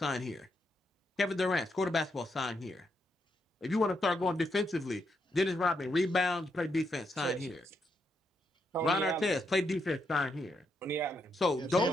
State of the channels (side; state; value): both; normal; correlation 0.80